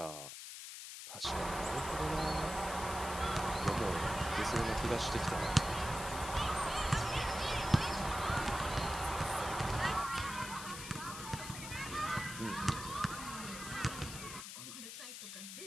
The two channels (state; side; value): noise; left; hiss, 9 dB below the sound